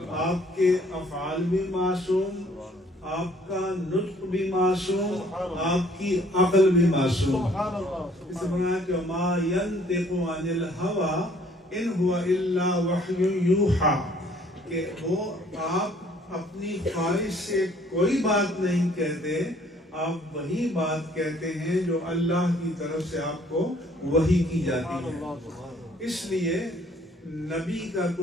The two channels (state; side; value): normal; both; correlation 0.60